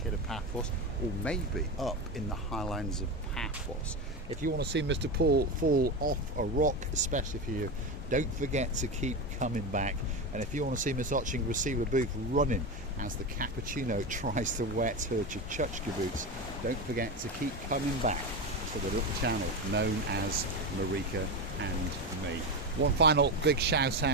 Paphos, or maybe up in the highlands of Paphos. If you want to see Mr. Paul fall off a rock, especially for you, don't forget to keep coming back. And if you want to see Miss Ochin Grasilia Booth running as the cappuccino tries to wet her Chuchka boots, don't forget to keep coming back to the little channel known as Marika and Me. One final big shout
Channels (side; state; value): both; normal; correlation 0.18